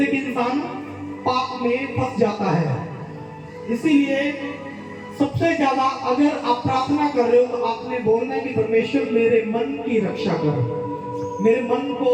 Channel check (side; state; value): both; identical; correlation 1.00